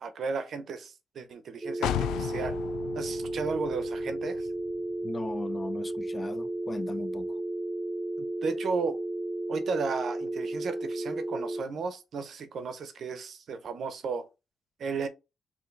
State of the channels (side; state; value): both; normal; correlation 0.82